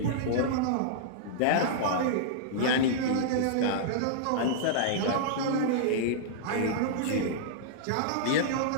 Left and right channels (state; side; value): different; both; correlation -0.02